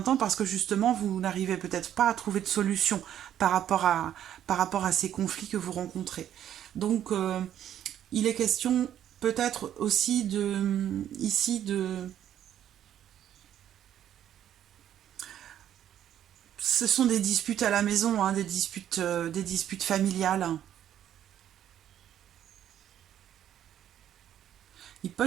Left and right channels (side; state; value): left; quieter; 10.7 dB